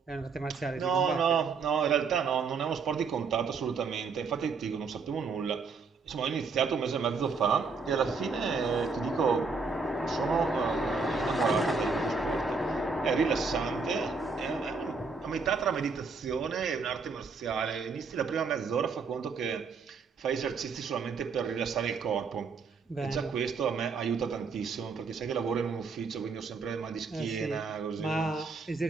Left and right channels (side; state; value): left; quieter; 4.8 dB